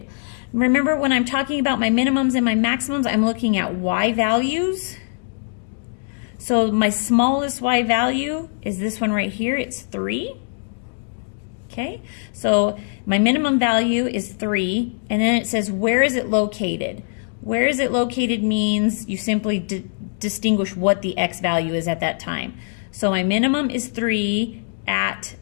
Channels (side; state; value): right; silent; digital silence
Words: Remember, when I'm talking about my minimums and my maximums, I'm looking at y values. So my smallest y value is this one right here, it's 3. Okay, so my minimum value is 3, and then it says, where is it located? Where is it located means you simply distinguish what the x value is at that time. So my minimum is 3 at